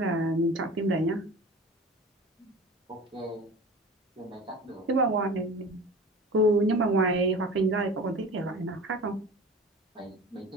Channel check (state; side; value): normal; both; correlation 0.37